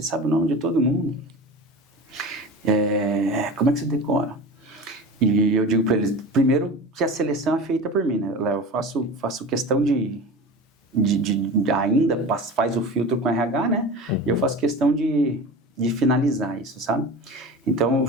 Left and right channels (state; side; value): normal; both; correlation 0.32